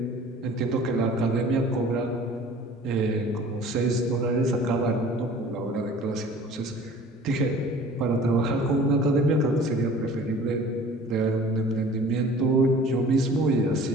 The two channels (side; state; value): both; normal; correlation 0.47